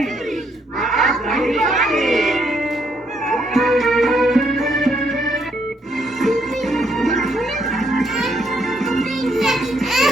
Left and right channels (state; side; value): normal; both; correlation 0.72